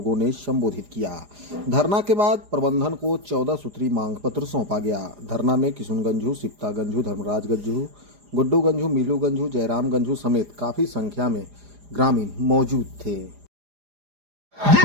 ने संबोधित किया। धरना के बाद प्रबंधन को 14 सूत्री मांग पत्र सौंपा गया। धरना में किशुन गंझू, सिप्ता गंझू, धर्मराज गंझू, गुड्डू गंझू, मीलू गंझू, जयराम गंझू समेत काफी संख्या में ग्रामीण मौजूद थे।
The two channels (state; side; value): late; left; 4.9 ms